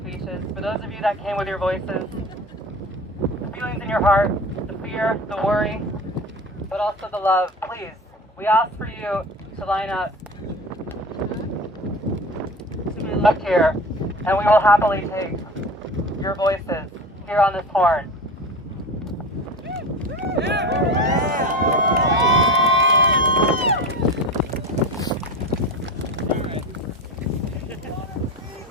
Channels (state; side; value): normal; both; correlation 0.32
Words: for those of you that came with your voices, the feelings in your heart, the fear, the worry, but also the love, please, we ask for you to line up to my left here, and we will happily take your voices here on this horn.